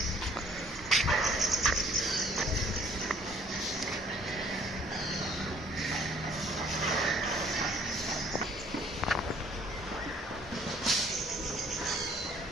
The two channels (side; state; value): both; normal; correlation 0.58